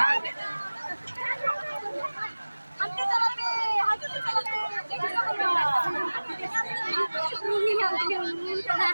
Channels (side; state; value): both; inverted; correlation -1.00